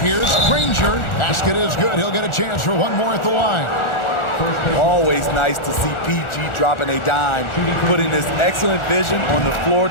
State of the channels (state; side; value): late; right; 1.4 ms